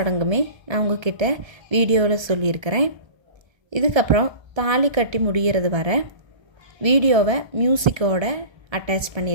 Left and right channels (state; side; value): late; left; 1.3 ms